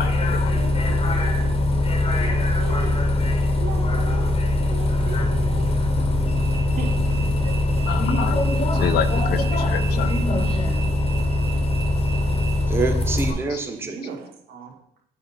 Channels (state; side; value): normal; both; correlation 0.79